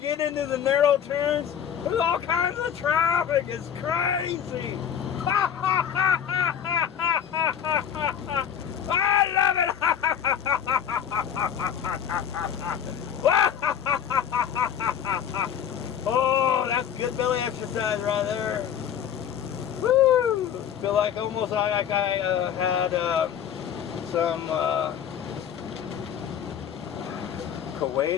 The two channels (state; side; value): quieter; right; 8.7 dB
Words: into the narrow turns, there's all kinds of traffic. It's crazy. I love it. Oh, that's good belly exercise right there. Woo! Feel like almost like I had some